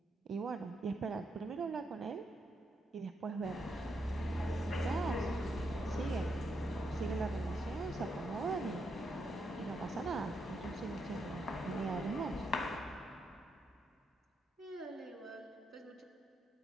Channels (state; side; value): normal; both; correlation 0.81